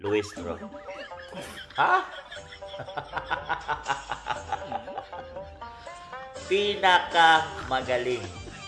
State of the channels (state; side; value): identical; both; correlation 1.00